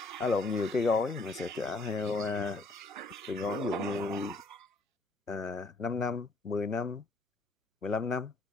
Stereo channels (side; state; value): right; quieter; 3.2 dB